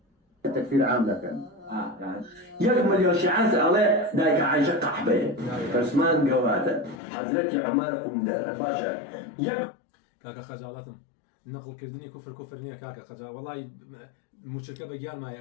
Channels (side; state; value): right; drops out; at 7.0 s